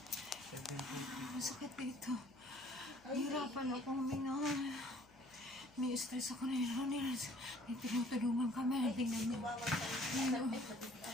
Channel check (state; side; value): noise; left; hum, 28 dB below the sound